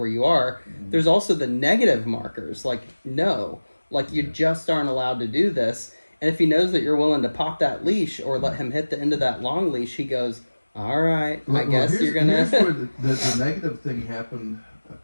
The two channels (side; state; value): both; inverted; correlation -1.00